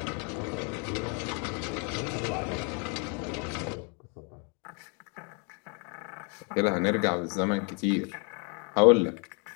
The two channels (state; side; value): quieter; right; 36.1 dB